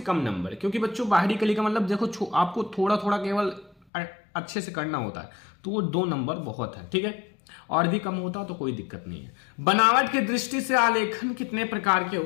नंबर, क्योंकि बच्चों बाहरी कली का मतलब देखो आपको थोड़ा थोड़ा केवल अच्छे से करना होता है, तो वो 2 नंबर बहुत है। ठीक है, और भी कम होता तो कोई दिक्कत नहीं है। बनावट की दृष्टि से आलेखन कितने प्रकार के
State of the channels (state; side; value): drops out; right; at 3.8 s